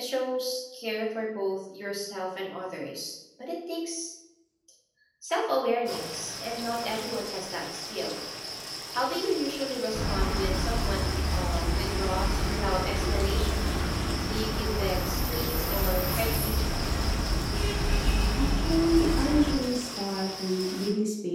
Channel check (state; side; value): identical; both; correlation 1.00